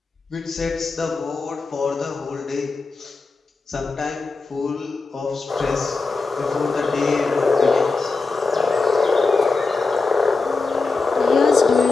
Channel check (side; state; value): right; quieter; 4.0 dB